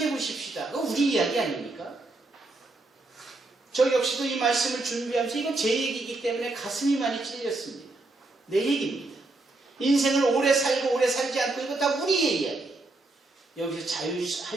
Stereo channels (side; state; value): left; quieter; 3.0 dB